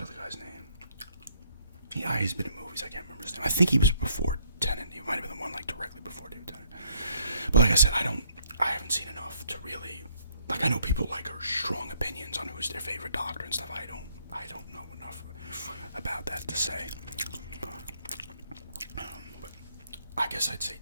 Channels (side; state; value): both; inverted; correlation -0.65